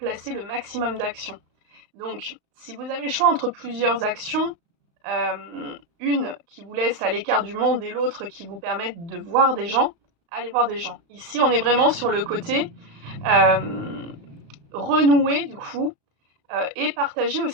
le maximum d'actions. Donc, si vous avez le choix entre plusieurs actions, une qui vous laisse à l'écart du monde et l'autre qui vous permette de voir des gens, allez voir des gens. Ici, on est vraiment sur le côté renouer du coup et partager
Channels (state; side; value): late; left; 35 ms